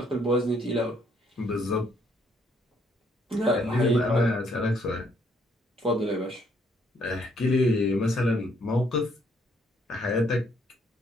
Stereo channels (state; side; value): normal; both; correlation 0.68